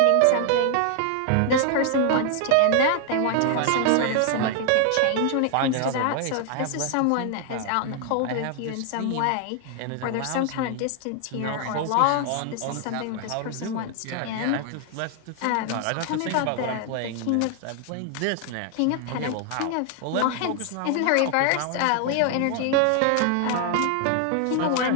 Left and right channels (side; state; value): both; different; correlation 0.00